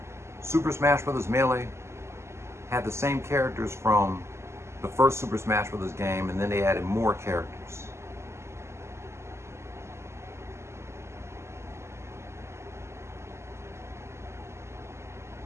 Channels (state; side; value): late; left; 0.13 ms